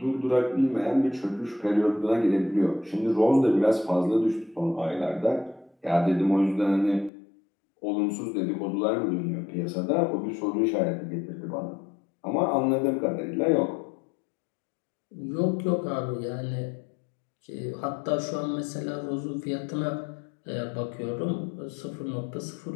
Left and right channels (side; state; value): right; drops out; at 7.1 s